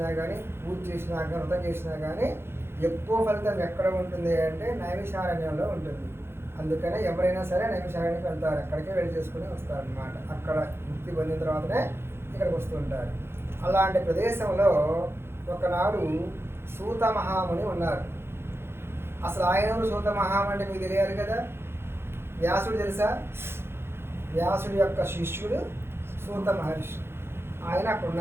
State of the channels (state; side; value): late; left; 0.12 ms